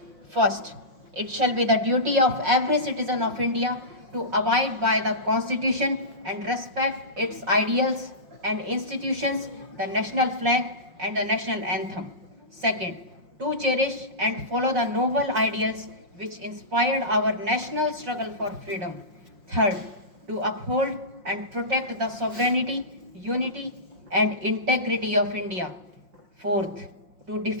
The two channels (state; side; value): late; left; 5.6 ms